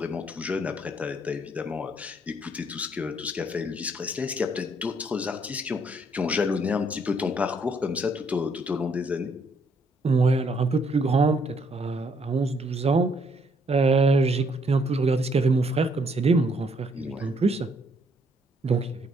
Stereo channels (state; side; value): normal; both; correlation 0.69